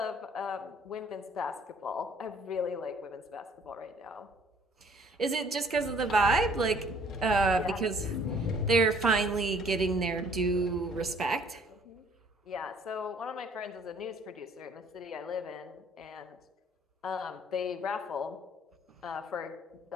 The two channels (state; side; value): normal; both; correlation 0.58